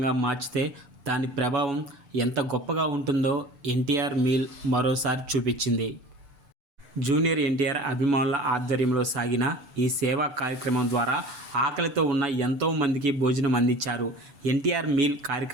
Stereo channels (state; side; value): late; left; 8.0 ms